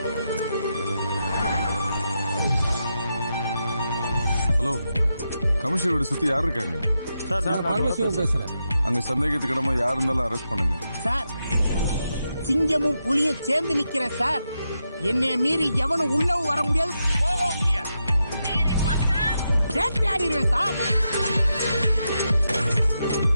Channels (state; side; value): inverted; both; correlation -0.86